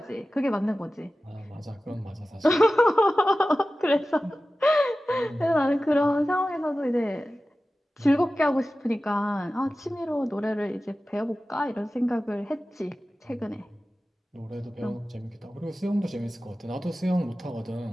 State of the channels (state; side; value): normal; both; correlation 0.95